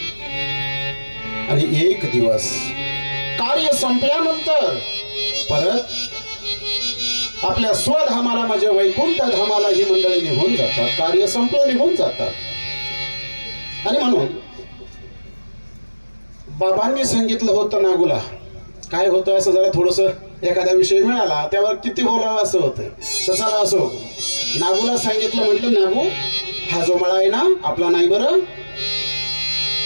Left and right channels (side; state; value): both; inverted; correlation -1.00